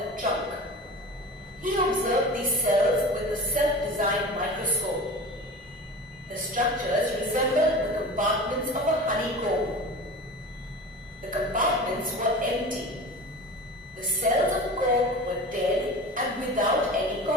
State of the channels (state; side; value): normal; both; correlation 0.35